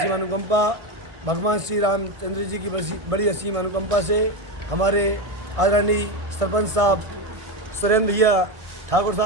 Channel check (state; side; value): late; left; 1.5 ms